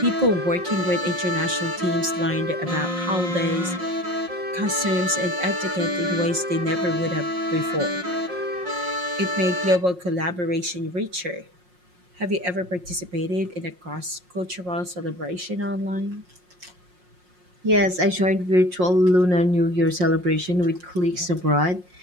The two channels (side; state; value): left; late; 5.6 ms